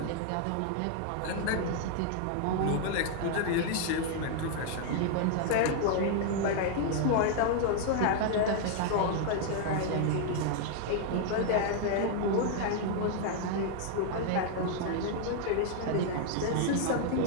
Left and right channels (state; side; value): different; both; correlation 0.00